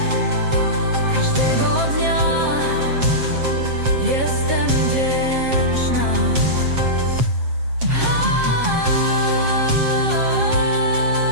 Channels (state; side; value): late; left; 7.5 ms